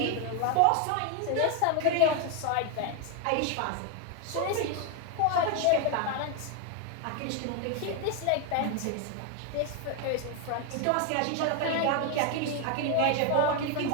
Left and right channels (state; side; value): different; both; correlation 0.01